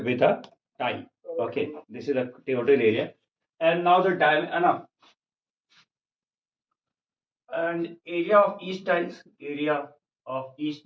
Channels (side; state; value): both; identical; correlation 1.00